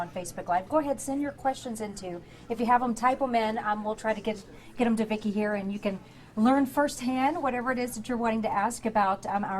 on Facebook Live, go ahead, send your questions into. If you have them, type them in. We'll try to get them to Vicki here, and you can learn firsthand whatever it is that you're wanting to ask about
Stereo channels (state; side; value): identical; both; correlation 1.00